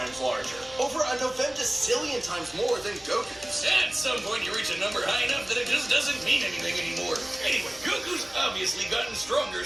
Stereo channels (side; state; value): left; noise; rumble, 25 dB below the sound